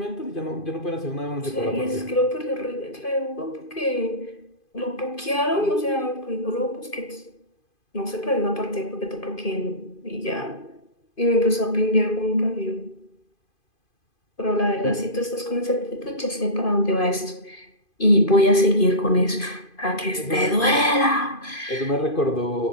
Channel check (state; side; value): late; right; 2.5 ms